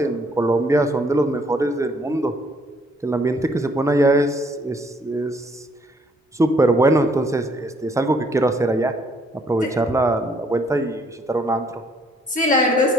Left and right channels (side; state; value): both; normal; correlation 0.65